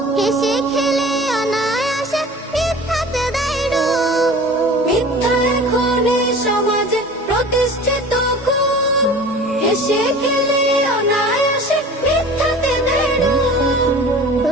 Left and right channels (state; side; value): normal; both; correlation 0.41